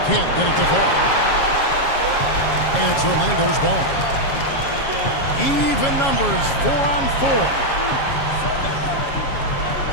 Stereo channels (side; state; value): right; late; 7.3 ms